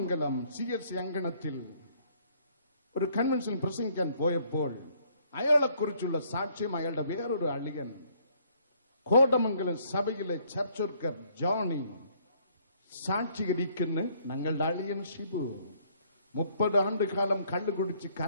CSI അങ്കണത്തിൽ ഒരു കൺവെൻഷൻ പ്രസംഗിക്കാൻ പോയപ്പോൾ അയാളെക്കുറിച്ചുള്ള സാക്ഷ്യം അയാളുടെ വേറൊരു അളിയൻ, കോതമംഗലം സഭയിലെ ചർച്ച് വർക്കർ ജോണി സാക്ഷീകരിക്കുന്ന ഞങ്ങളുടെ അളിയൻ ഷിബു 30 ആണ്ടുകാലം കള്ളു കുടിച്ച്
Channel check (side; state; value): both; inverted; correlation -0.65